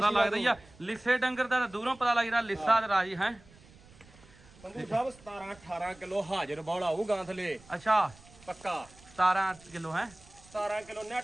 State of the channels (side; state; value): right; noise; rumble, 24 dB below the sound